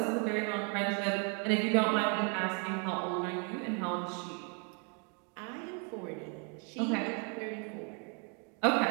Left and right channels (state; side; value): quieter; left; 37.2 dB